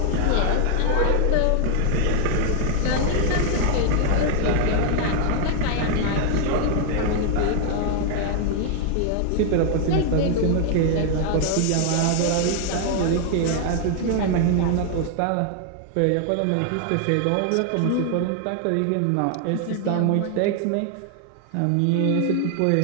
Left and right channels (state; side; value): different; both; correlation 0.00